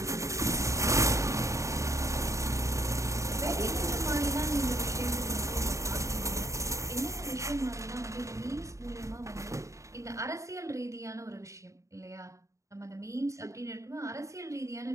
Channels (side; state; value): left; late; 0.15 ms